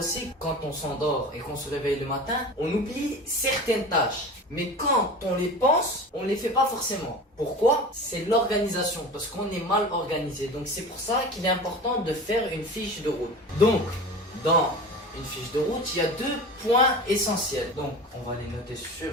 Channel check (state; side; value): normal; both; correlation 0.34